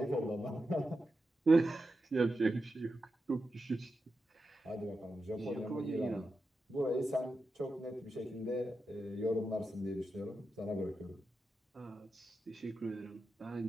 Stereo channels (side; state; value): both; normal; correlation 0.89